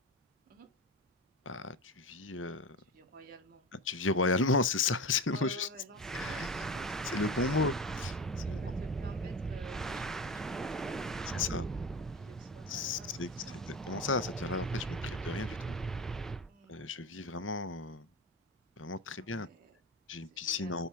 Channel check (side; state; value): both; normal; correlation 0.28